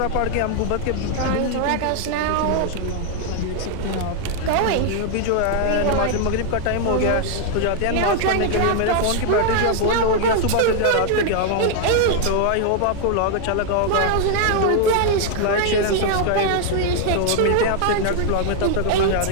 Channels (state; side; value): different; both; correlation 0.00